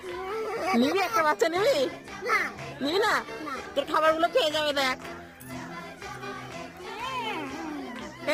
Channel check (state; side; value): identical; both; correlation 1.00